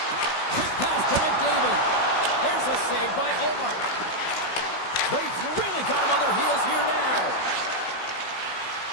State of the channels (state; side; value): late; right; 16 ms